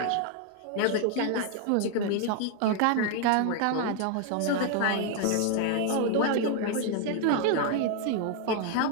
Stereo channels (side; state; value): both; different; correlation 0.00